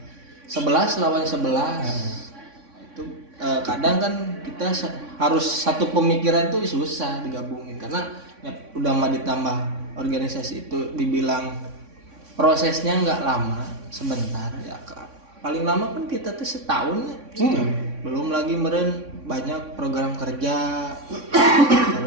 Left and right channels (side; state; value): left; late; 3.6 ms